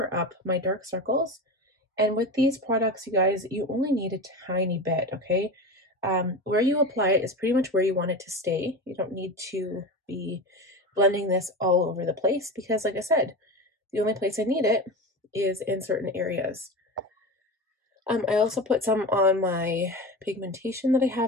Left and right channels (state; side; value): normal; both; correlation 0.25